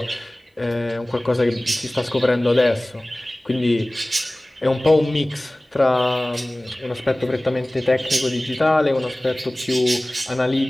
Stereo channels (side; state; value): both; normal; correlation 0.98